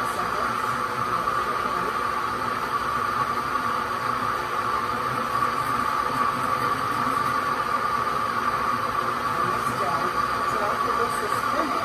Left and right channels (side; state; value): both; identical; correlation 1.00